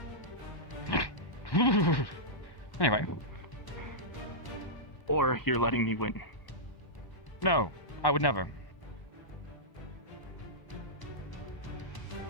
Anyway. Or you're letting me win. No, I would never.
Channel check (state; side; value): late; right; 1.0 ms